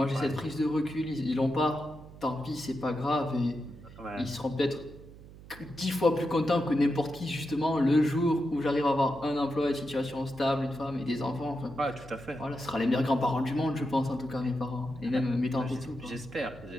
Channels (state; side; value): noise; right; hum, 18 dB below the sound